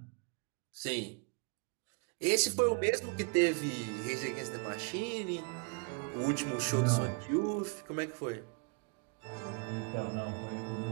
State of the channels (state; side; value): quieter; left; 32.5 dB